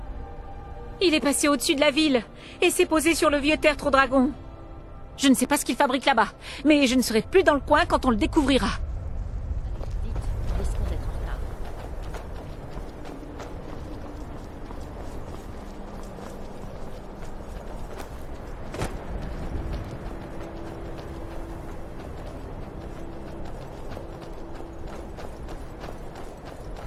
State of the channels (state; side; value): identical; both; correlation 1.00